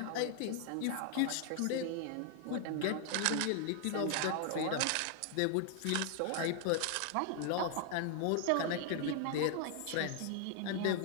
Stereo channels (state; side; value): different; both; correlation 0.00